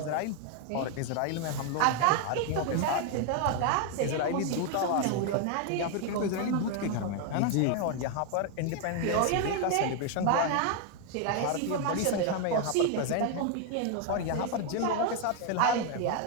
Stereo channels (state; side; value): different; both; correlation 0.00